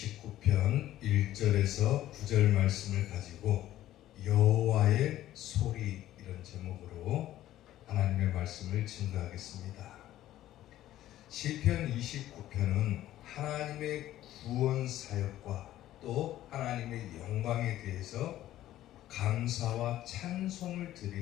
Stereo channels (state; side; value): quieter; right; 13.7 dB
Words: 1절에서 9절 말씀을 가지고 여호와의 소리 이런 제목으로 하나님의 말씀을 증거하겠습니다. 시편 29편은 하나님의 구원 사역과 또 하나님의 영광에 대해서 감사와 찬송을